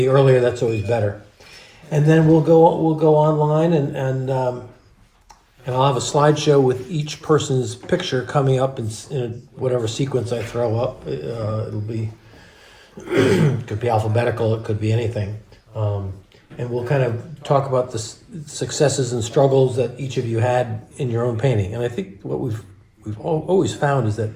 earlier, that's always better. And then we'll go online and I'll have a slideshow with each person's picture coming up in whatever sequence I throw up. It'll be could be alphabetical, it could be anything. And we'll kind of talk about the successes and struggles that each of you had in your own painting. And I think what we've always found is that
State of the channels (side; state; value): both; identical; correlation 1.00